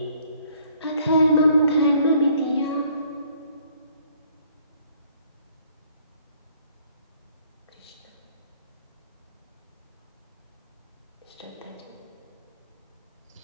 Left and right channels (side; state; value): both; inverted; correlation -0.62